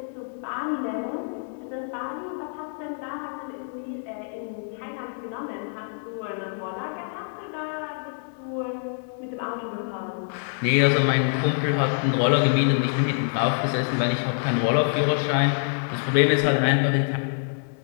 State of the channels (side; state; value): right; silent; 61 dB below the other